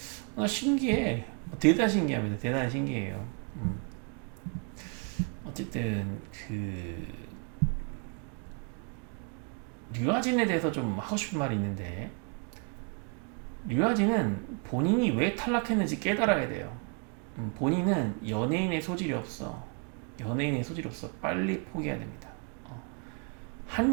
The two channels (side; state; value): left; quieter; 35.4 dB